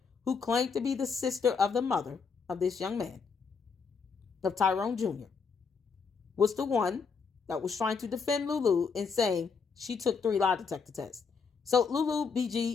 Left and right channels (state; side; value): quieter; right; 5.4 dB